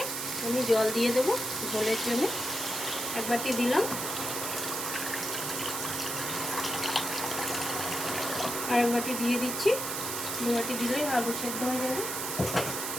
আমি জল দিয়ে দেবো ঝোলের জন্য। এক বাটি দিলাম, আর এক বাটি দিয়ে দিচ্ছি। দু বাটি দিলেই আলু সেদ্ধ হয়ে যাবে।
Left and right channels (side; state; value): right; noise; hiss, 3 dB below the sound